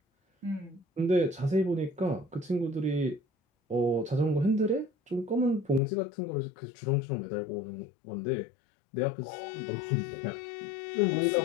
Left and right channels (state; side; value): drops out; right; at 5.8 s